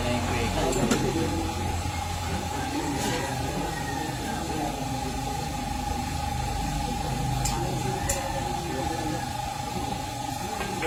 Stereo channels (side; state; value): both; identical; correlation 1.00